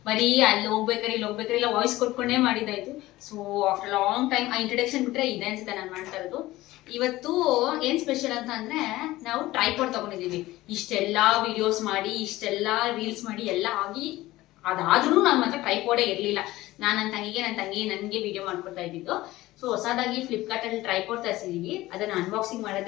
ಬರೀ ಅಲ್ಲಿ ಹೋಗ್ಬೇಕಾರೆ ಇಲ್ಲಿ ಹೋಗ್ಬೇಕಾರೆ ಇಲ್ಲ ವಾಯ್ಸ್ ಕೊಟ್ಕೊಂಡೇ ಮಾಡಿದಾಯ್ತು. ಸೊ ಆಫ್ಟರ್ ಲಾಂಗ್ ಟೈಮ್ ಆ ಇಂಟ್ರಡಕ್ಷನ್ ಬಿಟ್ರೆ ಇದೆ ಅನ್ಸುತ್ತೆ ನಾನು ಮಾಡ್ತಾ ಇರೋದು. ಇವತ್ತು ಏನ್ ಸ್ಪೆಷಲ್ ಅಂತ ಅಂದ್ರೆ ನಾವು ಟ್ರೈಪಾಡ್ ತಗೊಂಡಿದೀವಿ. ಇಷ್ಟೆಲ್ಲಾ ವಿಡಿಯೋಸ್ ಮಾಡಿ ಇಷ್ಟೆಲ್ಲಾ ರೀಲ್ಸ್ ಮಾಡಿ ಎಲ್ಲ ಆಗಿ ಅದಾದ್ರೂ ನನ್ನ ಮಾತ್ರ ಟ್ರೈಪಾಡೇ ಇರ್ಲಿಲ್ಲ. ನನ್ನ ತಂಗಿ ನನಗೆ ವಿಡಿಯೋ ಮಾಡ್ಕೊಡ್ತಾ ಇದ್ದಿದ್ದು. ಸೊ ಹೊಸದಾಗಿ ಫ್ಲಿಪ್ಕಾರ್ಟ್ ಅಲ್ಲಿ ಟ್ರೈಪಾಡ್ ತರಿಸಿದೀವಿ. ಅದನ್ನ ಅನ್ಬಾಕ್ಸಿಂಗ್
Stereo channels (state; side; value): quieter; right; 17.5 dB